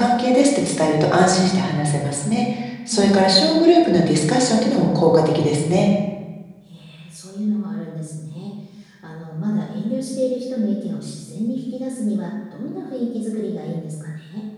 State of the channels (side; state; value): both; identical; correlation 1.00